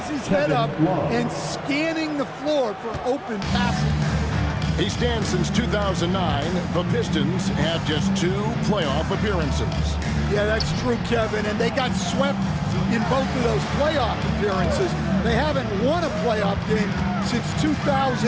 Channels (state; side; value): identical; both; correlation 1.00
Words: his head up and scanning the floor for open passing. He stands since 2009. The Pistons have just 2 playoff appearances. Yeah, that's true, Kevin, and they got swept in both of those playoff appearances. They haven't won a playoff game since